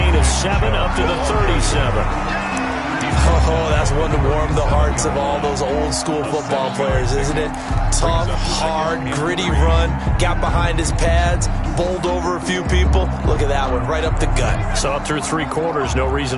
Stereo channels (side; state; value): both; identical; correlation 1.00